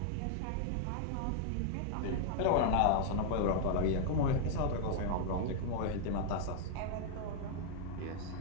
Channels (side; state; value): both; different; correlation -0.01